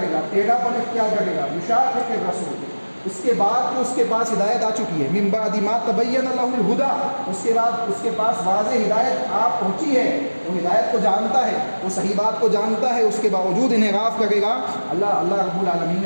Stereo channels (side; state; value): both; inverted; correlation -1.00